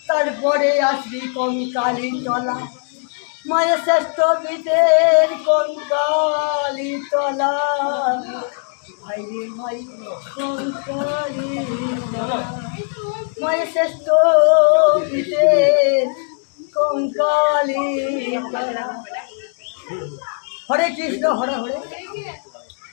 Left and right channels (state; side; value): silent; right; 56 dB below the other